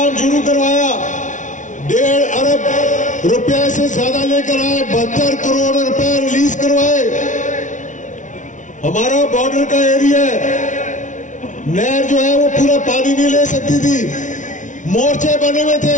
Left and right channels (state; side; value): late; right; 0.37 ms